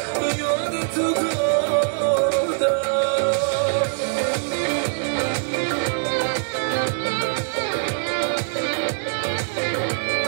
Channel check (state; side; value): silent; left; 58 dB below the other